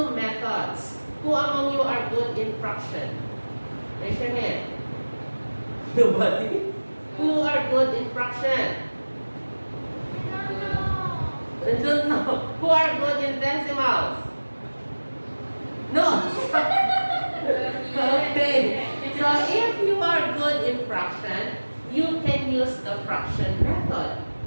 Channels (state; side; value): inverted; both; correlation -1.00